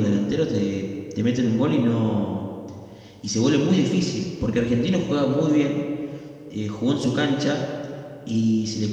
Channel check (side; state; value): both; identical; correlation 1.00